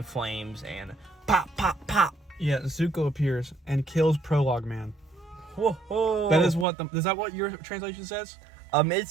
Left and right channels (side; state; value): left; drops out; at 6.7 s